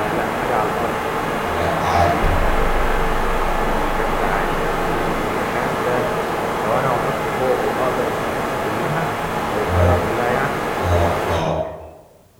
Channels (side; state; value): both; identical; correlation 1.00